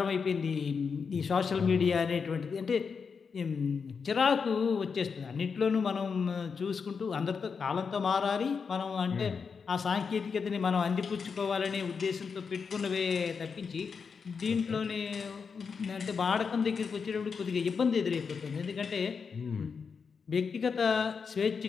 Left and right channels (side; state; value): right; quieter; 5.7 dB